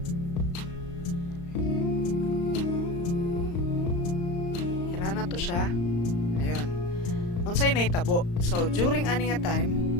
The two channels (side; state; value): right; late; 35 ms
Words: ira na to siya. Ayun, unsay nahitabo. So during ani nga time